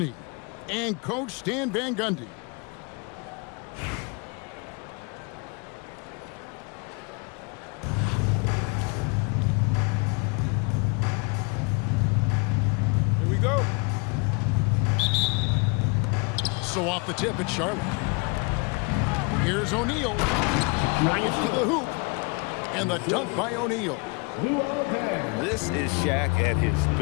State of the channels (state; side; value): quieter; right; 31.2 dB